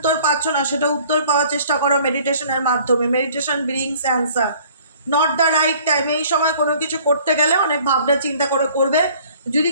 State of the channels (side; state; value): both; inverted; correlation -0.54